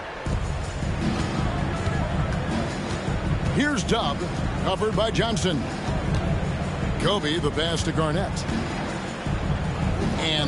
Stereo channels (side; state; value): both; identical; correlation 1.00